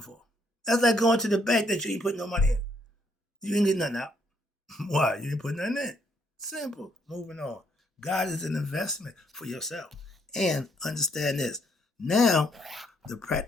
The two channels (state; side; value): normal; both; correlation 0.71